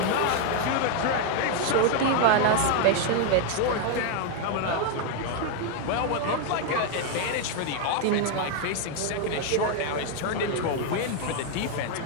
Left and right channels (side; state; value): both; different; correlation 0.00